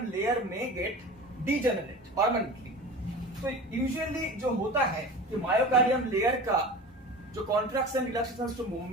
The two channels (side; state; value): both; normal; correlation 0.34